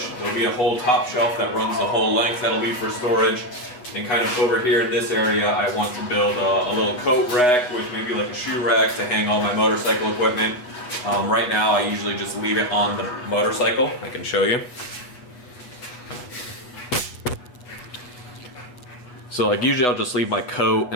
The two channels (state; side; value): late; right; 8.1 ms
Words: There'll be a whole top shelf that runs the whole length that'll be for storage. And kind of over here in this area, I want to build a little coat rack with maybe like a shoe rack to hang all my motorcycle equipment. Right now, I usually just leave it on the motorcycle. I can show you. So like usually I'll just leave my coat